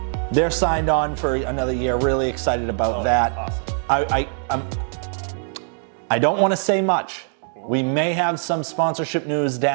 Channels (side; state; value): left; silent; 57 dB below the other